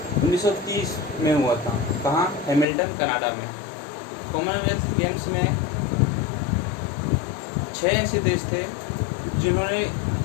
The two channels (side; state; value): right; drops out; at 2.7 s